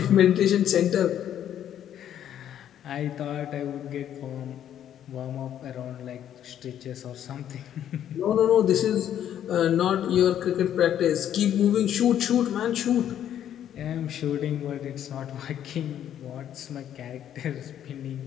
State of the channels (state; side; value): quieter; right; 10.4 dB